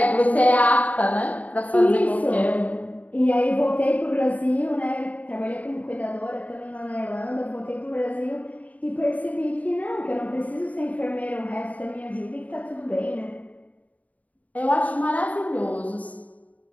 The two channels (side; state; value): right; late; 0.071 ms